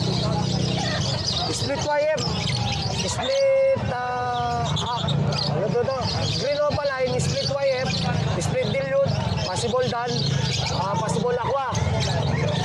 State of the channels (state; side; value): identical; both; correlation 1.00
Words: Split YF. Split, ano to? Green Opa Line, split YF. Split Dilute. Possible Dan. Possible Aqua.